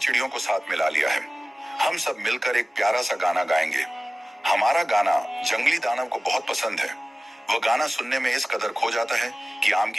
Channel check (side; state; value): both; normal; correlation 0.97